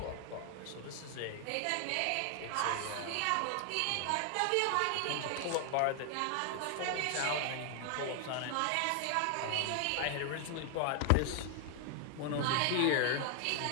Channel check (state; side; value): different; both; correlation 0.00